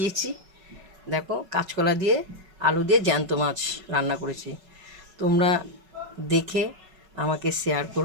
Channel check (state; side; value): late; left; 5.3 ms